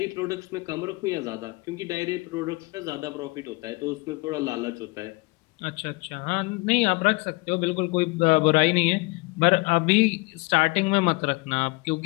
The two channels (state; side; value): quieter; right; 25.7 dB